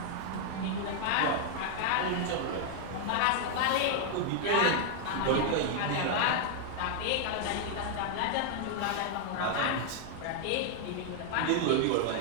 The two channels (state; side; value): different; both; correlation 0.00